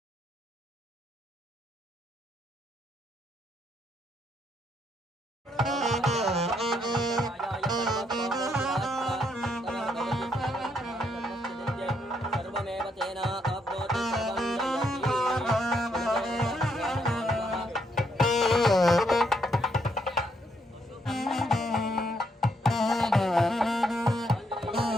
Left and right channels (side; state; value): both; normal; correlation 0.74